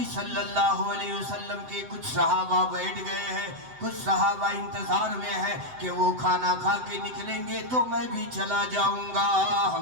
صلی اللہ علیہ وسلم کے کچھ صحابہ بیٹھ گئے ہیں، کچھ صحابہ انتظار میں ہیں کہ وہ کھانا کھا کے نکلیں گے تو میں بھی چلا جاؤں گا،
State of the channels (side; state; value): left; late; 7.8 ms